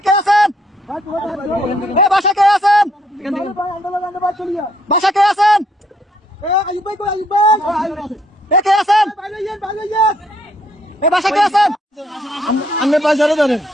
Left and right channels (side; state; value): both; normal; correlation 0.69